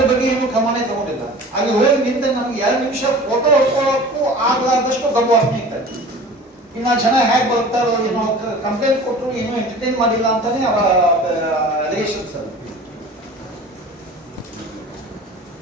ಬಗ್ಗೆ ಏನು ಕ್ರಮನೇ ತಗೊಂಡಿಲ್ಲ. ಅಲ್ಲಿ ಹೋಗಿ ನಿಂತ ನಮ್ಗೆ 2 ನಿಮಿಷ ಫೋಟೋ ಹೊಡ್ಕೊಳ್ಳೋಕ್ಕೂ ಆಗ್ಲಾರ್ದಷ್ಟು ಗರ್ವಾಗ್ತಾ ಇತ್ತು. ಇನ್ನು ಜನ ಹೇಗೆ ಬರ್ತಾರೋ ಏನೋ, ಕಂಪ್ಲೇಂಟ್ ಕೊಟ್ಟರು ಏನೋ ಎಂಟರ್ಟೈನ್ ಮಾಡಿಲ್ಲ ಅಂತಾನೆ ಅವರ ಅಲಿಗೇಷನ್ಸ್.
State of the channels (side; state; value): both; normal; correlation 0.41